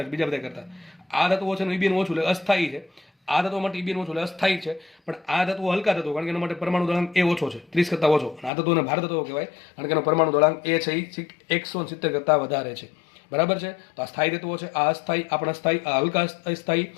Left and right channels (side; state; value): right; drops out; at 8.5 s